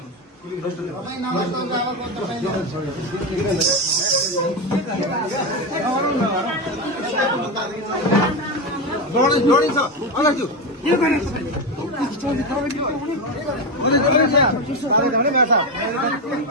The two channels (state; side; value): normal; both; correlation 0.13